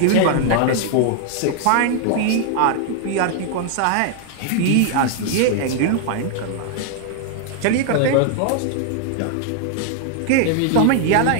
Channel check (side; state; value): both; different; correlation 0.00